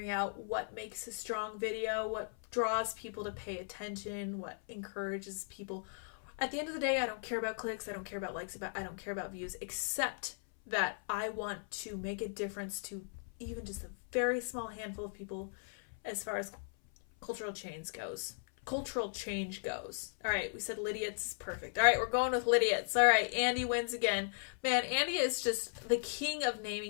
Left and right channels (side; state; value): right; silent; 53 dB below the other